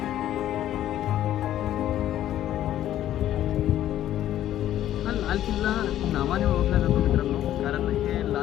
लाल किल्ला नावाने ओळखला जातो मित्रांनो, कारण हे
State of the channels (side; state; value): right; quieter; 12.3 dB